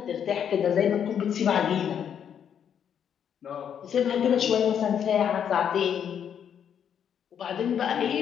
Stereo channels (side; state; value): right; quieter; 8.5 dB